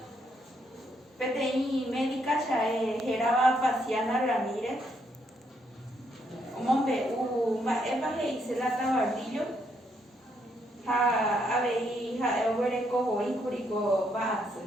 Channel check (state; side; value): normal; both; correlation 0.74